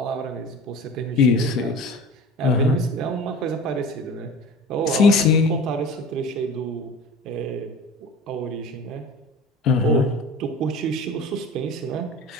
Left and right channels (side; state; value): both; normal; correlation 0.38